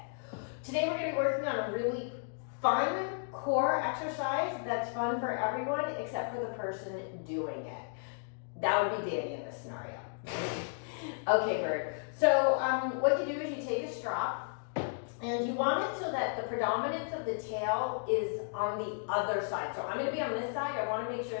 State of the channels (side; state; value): right; silent; digital silence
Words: Today we're going to be working on a really fun core exercise that's fun for everyone except for the person doing it. That would be Danny in this scenario. Okay, Bird. So what you do is you take a strap and you want it so that the predominance of the tail is on the other side. So I'm going to be on this side. I want to make sure